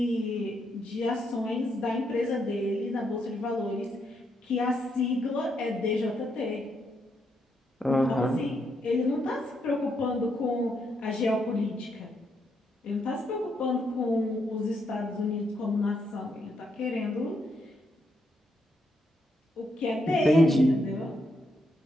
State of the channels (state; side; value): normal; both; correlation 0.78